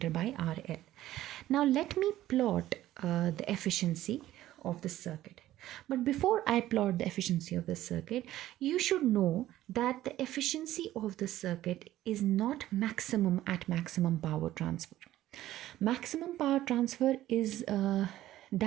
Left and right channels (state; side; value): quieter; left; 14.3 dB